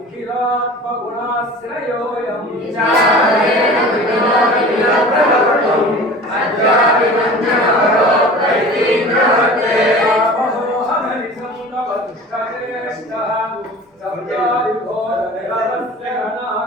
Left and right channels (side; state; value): both; normal; correlation 0.40